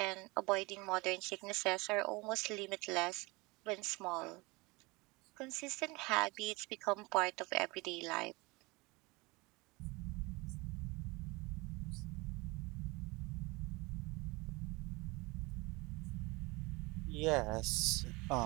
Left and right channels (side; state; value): left; quieter; 24.6 dB